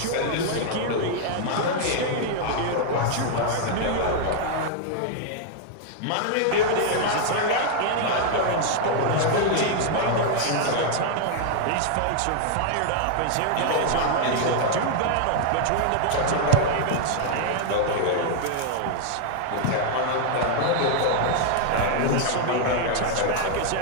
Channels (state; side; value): different; both; correlation 0.00